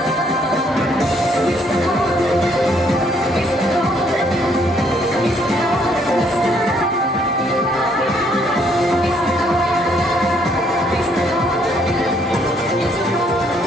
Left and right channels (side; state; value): both; normal; correlation 0.68